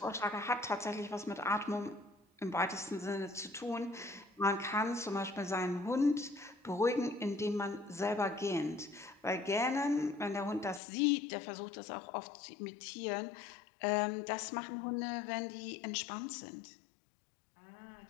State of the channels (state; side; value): drops out; right; at 10.8 s